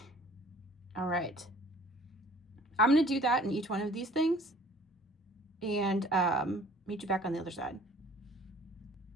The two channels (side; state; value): both; normal; correlation 0.52